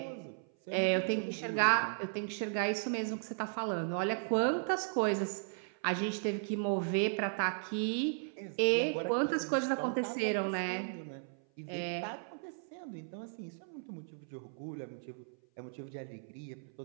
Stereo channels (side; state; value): left; silent; 54 dB below the other